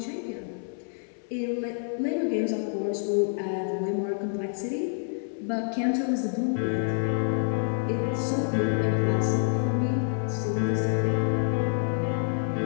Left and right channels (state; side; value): silent; right; 60 dB below the other